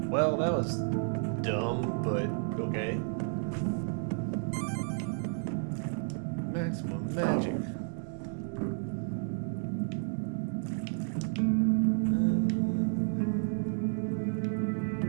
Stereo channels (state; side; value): silent; left; 57 dB below the other